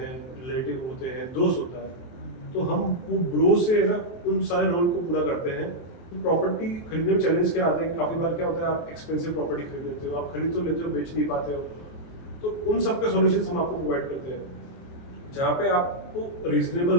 रिलेटिव होते हैं, दोस्त होता है, तो हम वो ब्रो से ना उन सारे रोल को पूरा करते हैं। प्रॉपर्टी खरीदने में चैलेंज क्या आते हैं, काफ़ी बार क्या होता है, आप एक्सपेंसिव प्रॉपर्टी खरीद लेते हो, आप खरीद तो लेते हो, बेच नहीं पाते हो, तो उन सब के सॉल्यूशंस हम आपको प्रोवाइड करते हैं, जहाँ पे आपको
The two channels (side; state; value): right; late; 23 ms